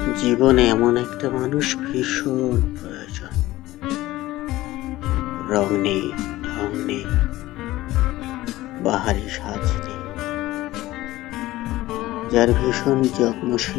জীবনে এমন একটা মানুষ ভীষণ প্রয়োজন। রং নেই, ঢং নেই, বাহারি সাজ নেই, যার ভীষণ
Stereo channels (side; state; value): right; quieter; 17.0 dB